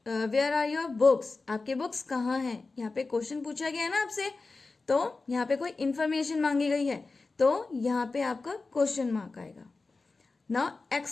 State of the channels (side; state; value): right; quieter; 3.8 dB